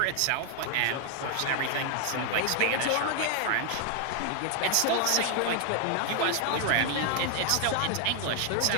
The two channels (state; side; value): different; both; correlation 0.00